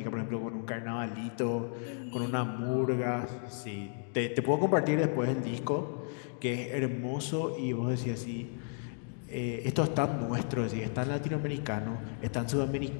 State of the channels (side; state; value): right; silent; 56 dB below the other